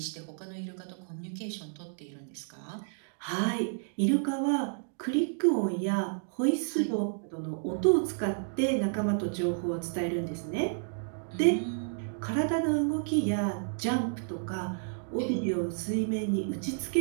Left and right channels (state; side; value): silent; left; digital silence